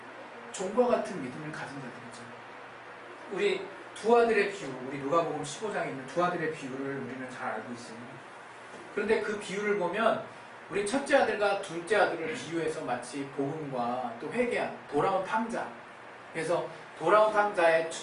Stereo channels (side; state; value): both; identical; correlation 1.00